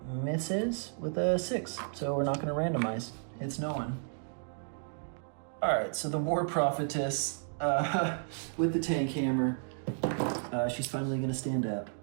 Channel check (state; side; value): silent; left; digital silence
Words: misses with a 6. So we're not gonna randomize. Hits no one. All right, so the War Prophetess with the tank hammer, she's finally gonna stand up.